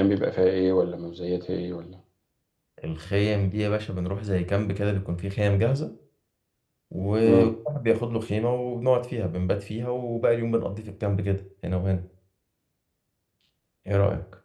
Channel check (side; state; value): both; identical; correlation 1.00